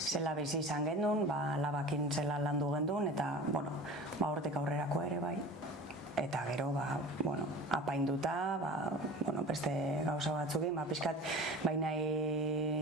bizi izan gendun, labakin zela landu gendun, eta hortik aurrerako ere bai. Eta gero, apainduta, beste gauza batzukin, pixkat,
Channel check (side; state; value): both; normal; correlation 0.38